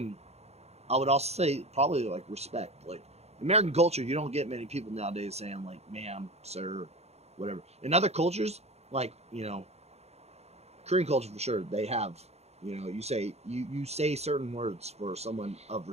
I would also say probably like respect. Like American culture, you don't get many people nowadays saying like ma'am, sir, whatever. In other cultures, like, you know, Korean culture for sure, they have, you know, you say certain words for someone of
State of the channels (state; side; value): late; left; 0.31 ms